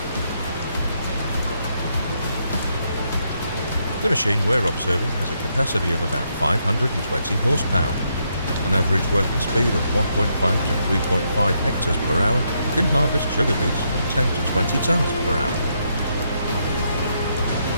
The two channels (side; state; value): both; inverted; correlation -0.77